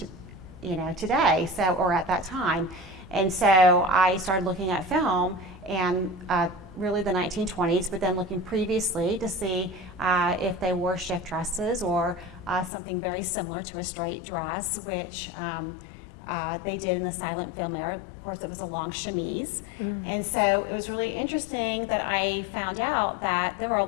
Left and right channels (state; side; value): drops out; right; at 12.7 s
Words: today, or at that time. And so I started looking at film and really the 1920s, but then looking previously to see if they wore shift dresses or something very similar to a straight dress, which they did in the silent film era. Of course, it was a long chemise. Mm-hmm. And so it was really interesting that I found out that there were a